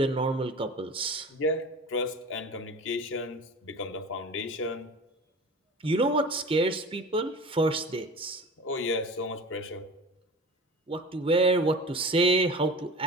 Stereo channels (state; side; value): normal; both; correlation 0.36